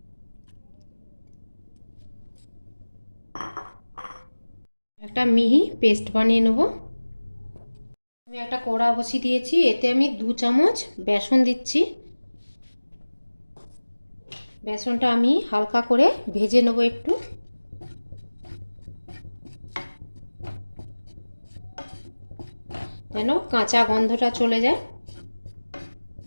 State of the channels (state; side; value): inverted; both; correlation -1.00